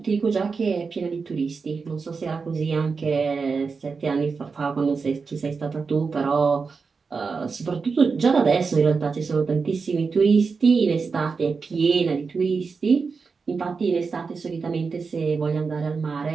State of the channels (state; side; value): quieter; left; 4.9 dB